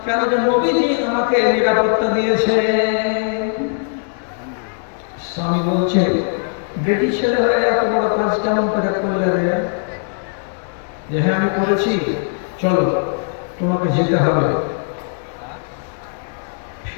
কেন যে নবীজি আমাকে নিরাপত্তা দিয়েছে। স্বামী বলছে বেটি ছেলে হয়ে এত বড় কাজ কেমন করে করলে রে? যে হ্যাঁ আমি করেছি, চলো তোমাকে যেতে হবে।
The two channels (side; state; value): right; silent; digital silence